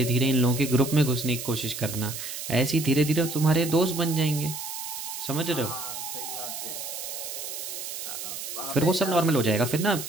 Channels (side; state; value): right; noise; hiss, 7 dB below the sound